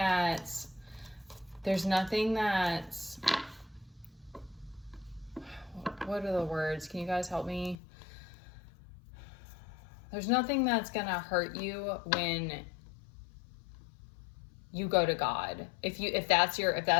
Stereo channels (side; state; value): right; drops out; at 7.8 s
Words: what are the words? Can you guys help me? There's nothing that's going to hurt you when you go to God. If that's